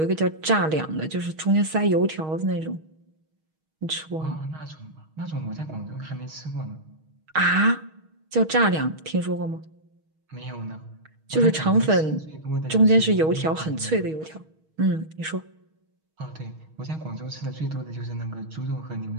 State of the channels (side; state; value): left; late; 6.4 ms